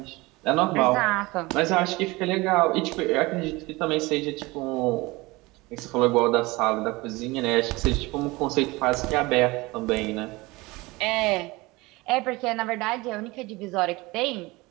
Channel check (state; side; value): quieter; left; 22.3 dB